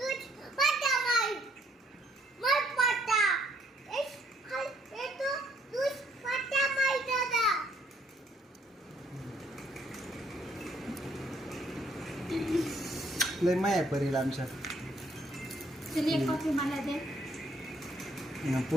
लय माया परीला आमच्या. चल एक कॉफी मला दे.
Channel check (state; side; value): normal; both; correlation 0.67